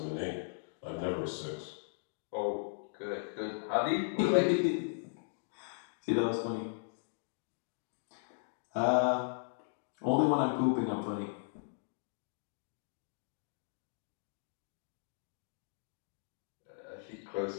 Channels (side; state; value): right; silent; digital silence